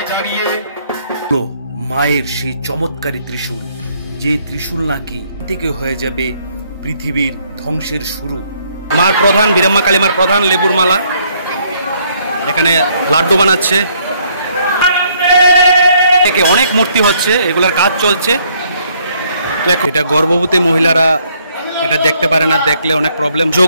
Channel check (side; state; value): both; inverted; correlation -0.67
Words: মায়ের সেই চমৎকারী ত্রিশূল, যে ত্রিশূল নাকি থেকে হয়ে যাবে পৃথিবীর ধ্বংসের শুরু। মার প্রধান বীরাম্মা কালীমার প্রধান লেবুর মালা, এখানে লাড্ডু বানাচ্ছে, অনেক মূর্তি হচ্ছে, এগুলার কাজ চলছে। এটা গর্ভবতী মহিলারা এটা দেখতে পারে না, দেখলে অনেক প্রবলেম।